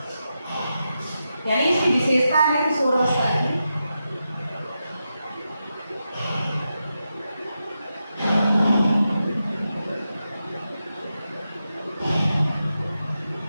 यानी इसकी विशेषता है किशोर अवस्था की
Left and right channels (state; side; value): inverted; both; correlation -0.88